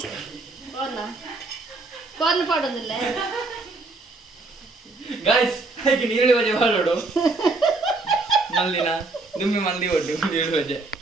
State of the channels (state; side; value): quieter; left; 3.4 dB